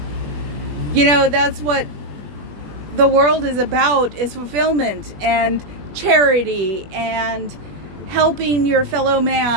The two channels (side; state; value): left; late; 21 ms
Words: You know, that's what the world is about, is fulfillment and charity and helping your fellow